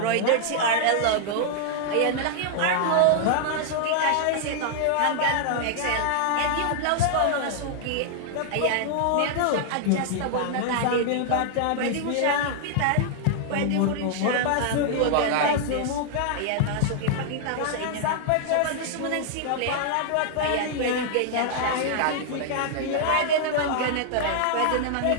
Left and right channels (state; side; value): different; both; correlation -0.01